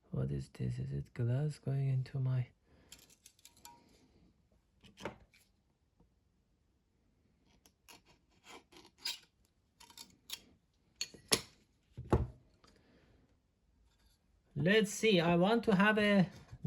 What is this? Is it glass going into my... Let's see, I want to have a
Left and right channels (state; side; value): identical; both; correlation 1.00